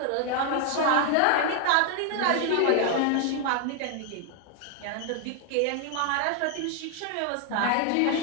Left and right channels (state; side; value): different; both; correlation 0.00